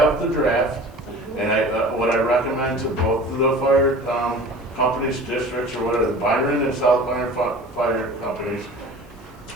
the draft, and what I recommend to both of the fire companies, districts, or whatever, the Byron and South Byron fire companies,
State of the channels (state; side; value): normal; both; correlation 0.41